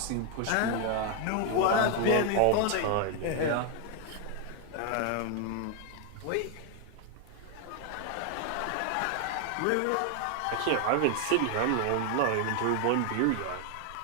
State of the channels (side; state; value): both; different; correlation 0.00